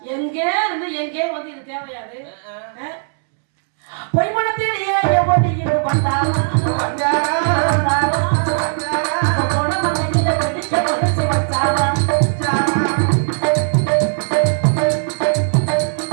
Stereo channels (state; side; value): silent; left; 67 dB below the other